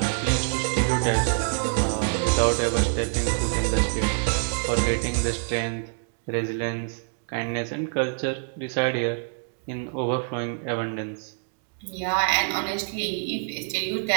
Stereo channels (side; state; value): left; silent; 61 dB below the other